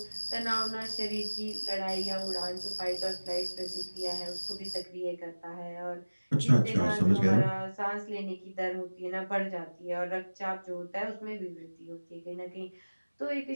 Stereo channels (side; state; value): both; inverted; correlation -1.00